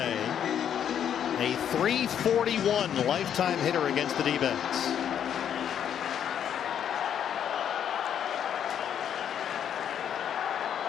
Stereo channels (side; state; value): right; quieter; 9.1 dB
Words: A .341 lifetime hitter against the D-backs.